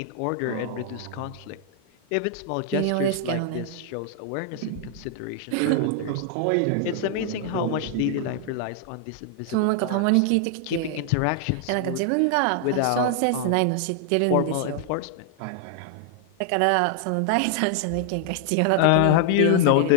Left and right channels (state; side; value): different; both; correlation 0.00